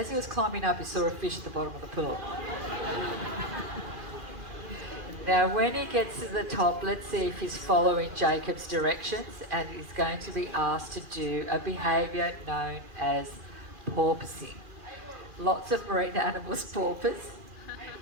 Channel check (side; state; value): left; late; 2.4 ms